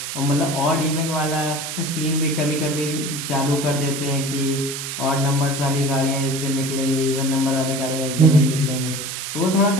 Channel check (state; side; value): noise; right; hiss, 6 dB below the sound